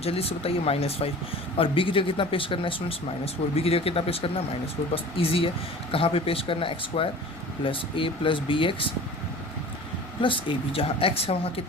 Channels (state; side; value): noise; left; rumble, 23 dB below the sound